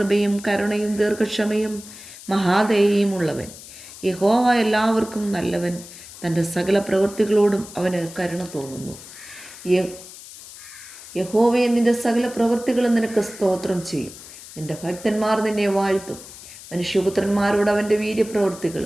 കരുണയും ദീർഘക്ഷമയും മഹാദയയും ഉള്ളവൻ. യഹോവ എല്ലാവർക്കും നല്ലവൻ. തൻ്റെ സകല പ്രവൃത്തികളോടും അവന് കരുണ തോന്നുന്നു. യഹോവയെ, നിൻ്റെ സകല പ്രവൃത്തികളും നിനക്ക് സ്തോത്രം ചെയ്യും. നിൻ്റെ ഭക്തന്മാർ നിന്നെ വാഴ്ത്തും. മനുഷ്യപുത്രന്മാരോട് അവൻ്റെ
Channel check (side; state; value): left; noise; hiss, 16 dB below the sound